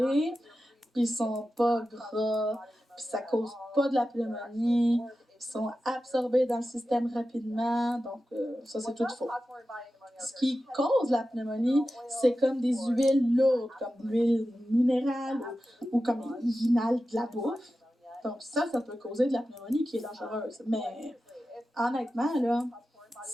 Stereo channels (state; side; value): normal; both; correlation 0.93